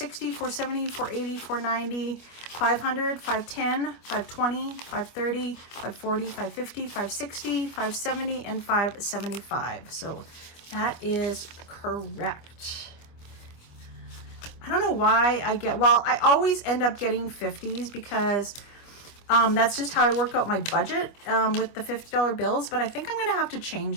470, 480, 490, 500, 510, 520, 530, 540, 550, 560, 570, and 575. So that is correct. I don't know why I get, well, I always end up getting 50s because that's just how I work out my budget with the $50 bills. But I think I'm going to have to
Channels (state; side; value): late; right; 25 ms